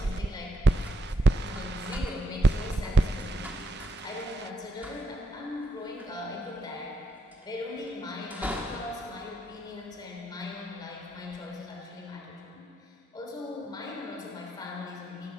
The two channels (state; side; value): normal; both; correlation 0.79